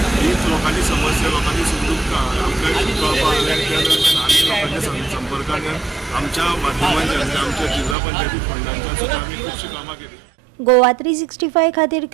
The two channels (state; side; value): drops out; left; at 8.0 s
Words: हीच लोकांची समस्या लोकांची सुखदुःखां आमकां कळपाक लागली आनी लोकांच्या संपर्कान आमच्या माध्यमांच्यान आमच्या जिल्हा पंचायती फंडांच्या सुद्दां आमी खुबशीं कामां केली. गोवा 365 खातीर